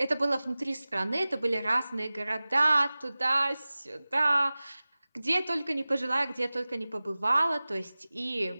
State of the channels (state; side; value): inverted; both; correlation -0.98